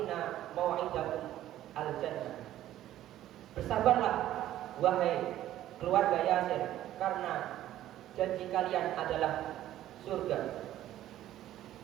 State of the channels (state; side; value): quieter; left; 13.2 dB